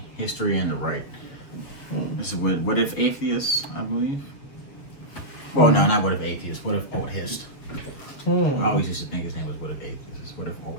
history, and the right. This is what if atheists, I believe. Well, no, not what if atheists. What if oldhist? I always used to think his name was what if atheists. What if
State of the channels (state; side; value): late; right; 7.2 ms